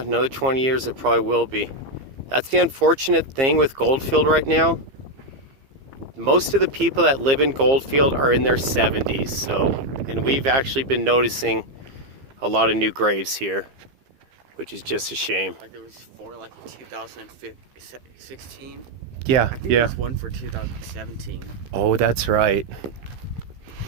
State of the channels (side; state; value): left; late; 15 ms